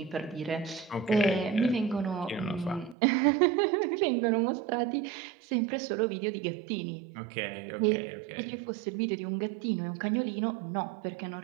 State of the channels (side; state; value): left; drops out; at 3.0 s